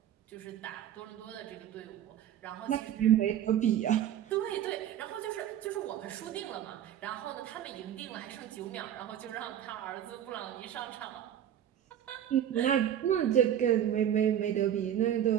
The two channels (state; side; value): quieter; left; 10.4 dB